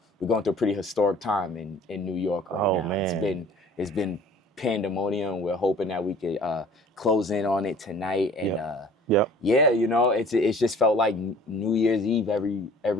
we're going through a pretty historic time in New York right now. Man. It's been pandemonium. We're hoping that we could close in on it tonight. And it's just felt like New Year's Eve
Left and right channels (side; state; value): both; normal; correlation 0.50